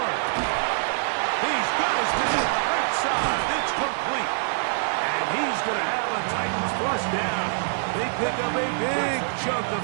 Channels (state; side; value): silent; left; digital silence